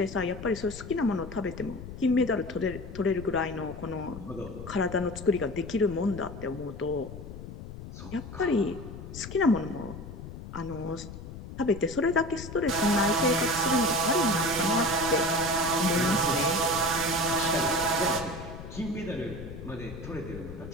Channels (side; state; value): left; noise; rumble, 12 dB below the sound